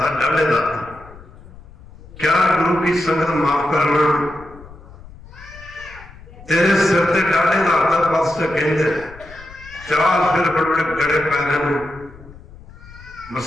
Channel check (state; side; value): noise; left; rumble, 20 dB below the sound